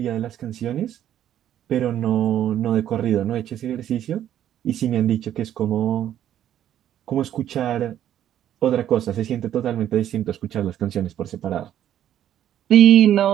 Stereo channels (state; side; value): quieter; left; 11.1 dB